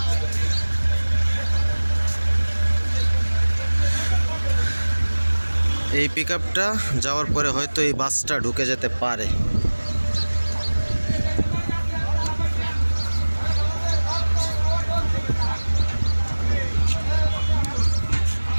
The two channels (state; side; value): inverted; both; correlation -1.00